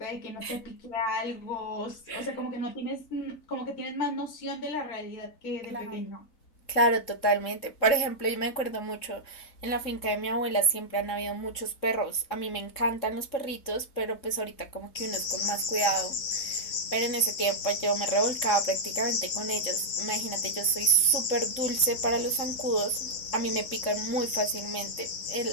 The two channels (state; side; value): late; right; 3.7 ms